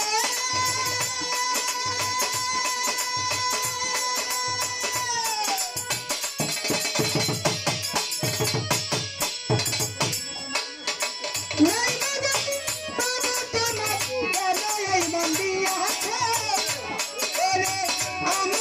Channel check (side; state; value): both; identical; correlation 1.00